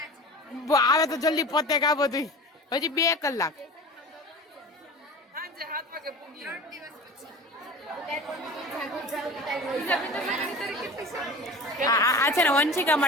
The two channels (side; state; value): both; normal; correlation 0.36